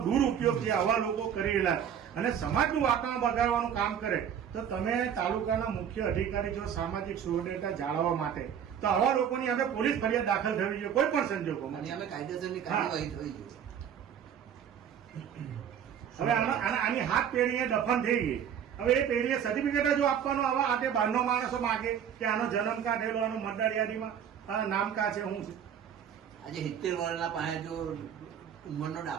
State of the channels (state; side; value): quieter; left; 8.7 dB